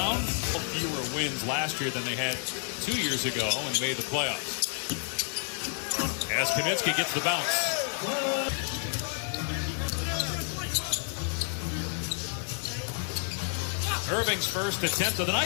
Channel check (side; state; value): right; silent; 56 dB below the other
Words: Fewer wins last year than they had 2 years ago when they made the playoffs. As Kaminsky gets the bounce. Irving's first attempt of the